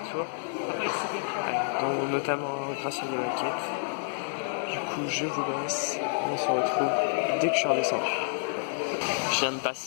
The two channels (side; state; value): right; silent; digital silence